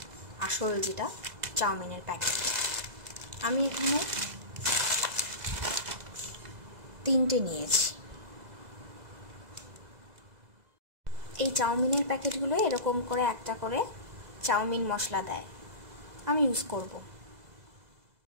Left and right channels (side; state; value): left; late; 2.0 ms